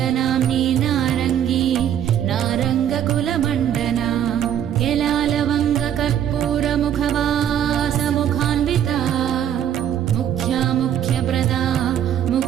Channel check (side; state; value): left; quieter; 10.0 dB